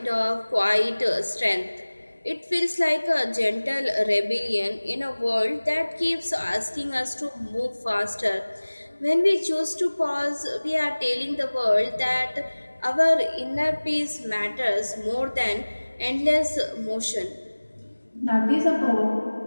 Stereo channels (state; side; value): inverted; both; correlation -1.00